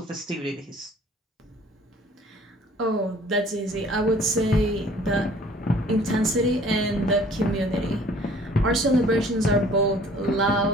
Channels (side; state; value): both; normal; correlation 0.53